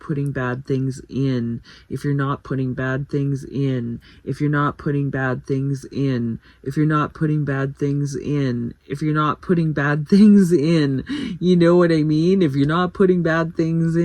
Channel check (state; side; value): identical; both; correlation 1.00